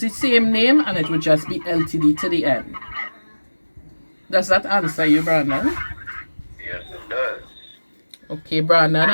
same name and it would just be LTD to the end. Does that answer you, Brandon? Yes, it does. Okay, Brandon,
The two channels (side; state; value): both; inverted; correlation -1.00